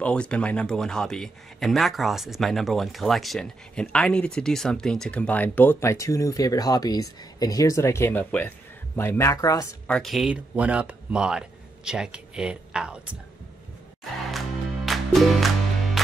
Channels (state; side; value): quieter; left; 3.1 dB